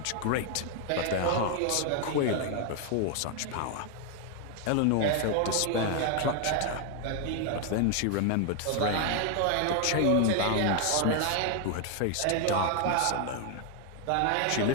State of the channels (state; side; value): different; both; correlation 0.00